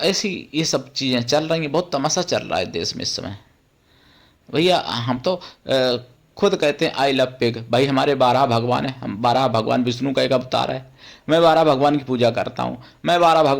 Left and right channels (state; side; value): identical; both; correlation 1.00